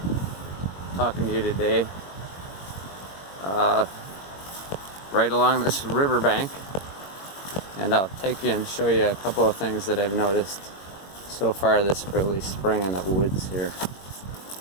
talking to you today right along this riverbank, and I'll take you and show you a couple of things that I've noticed so far this early spring in the woods here.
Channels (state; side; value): late; right; 21 ms